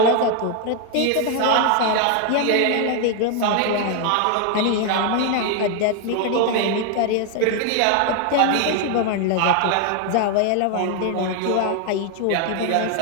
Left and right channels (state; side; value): different; both; correlation 0.00